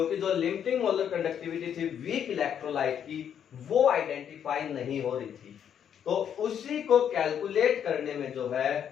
जो लिमिटिंग मोलर कंडक्टिविटी थी वीक इलेक्ट्रोलाइट की वो आइडेंटिफाई नहीं हो रही थी, तो उसी को कैलकुलेट करने में जो है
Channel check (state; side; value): quieter; right; 8.8 dB